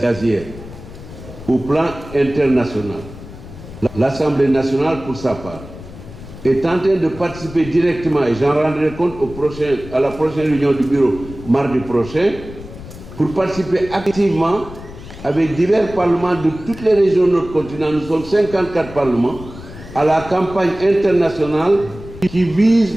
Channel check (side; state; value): left; noise; rumble, 15 dB below the sound